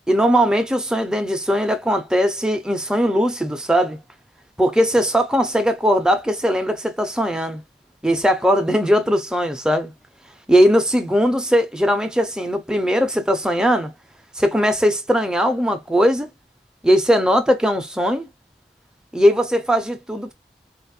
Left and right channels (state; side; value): normal; both; correlation 0.83